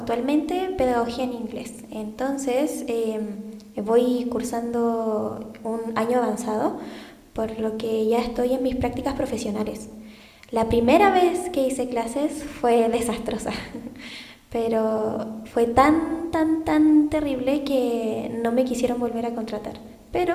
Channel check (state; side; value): identical; both; correlation 1.00